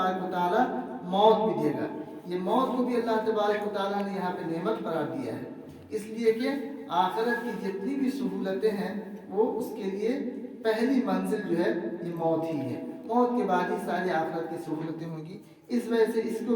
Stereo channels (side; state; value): both; identical; correlation 1.00